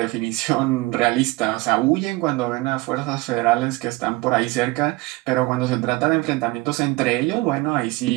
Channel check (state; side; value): quieter; left; 21.7 dB